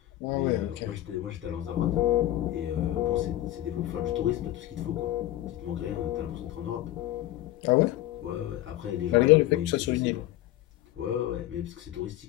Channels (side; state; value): right; quieter; 14.6 dB